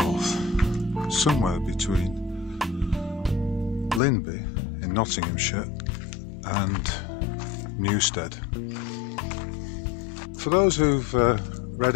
somewhere between Linby in Nottinghamshire and Newstead. For those who've read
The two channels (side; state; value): right; drops out; at 4.0 s